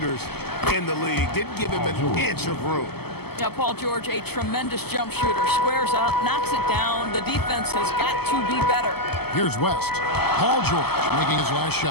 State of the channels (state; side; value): late; right; 0.96 ms